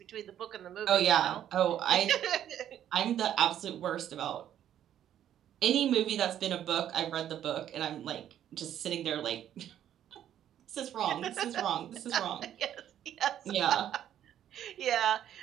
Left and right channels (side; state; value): left; quieter; 10.7 dB